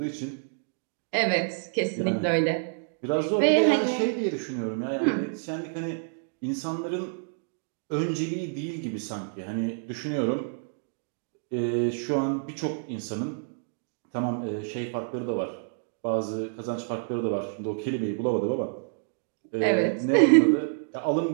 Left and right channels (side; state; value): left; silent; digital silence